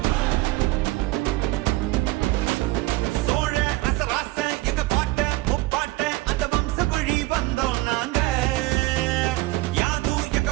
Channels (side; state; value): left; quieter; 19.4 dB